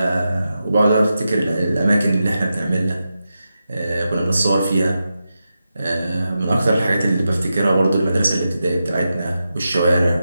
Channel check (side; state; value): both; inverted; correlation -0.89